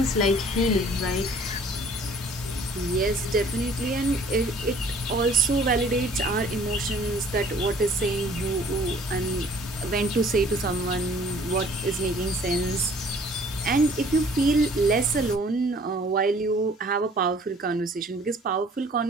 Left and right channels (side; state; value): both; normal; correlation 0.55